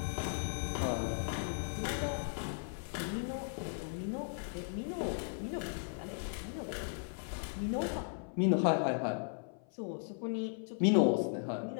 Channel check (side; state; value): right; silent; 53 dB below the other